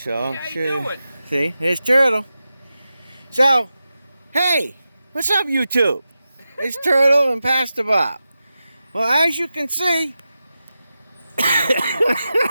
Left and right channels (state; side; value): inverted; both; correlation -0.92